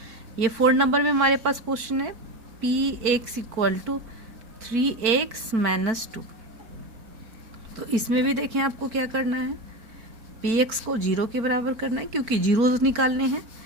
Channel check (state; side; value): late; left; 4.5 ms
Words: ये 4 नंबर में हमारे पास क्वेश्चन है px इक्वल टू 3x - 2। तो इसमें भी देखें आपको क्या करना है, px को 0 के बराबर करना है क्योंकि जीरोस निकालने हैं।